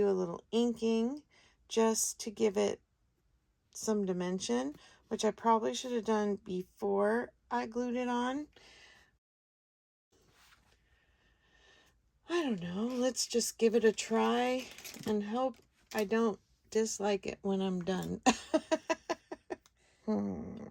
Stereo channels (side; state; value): both; identical; correlation 1.00